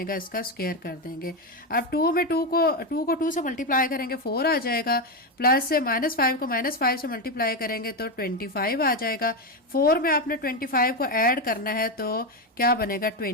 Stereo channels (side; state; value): both; normal; correlation 0.10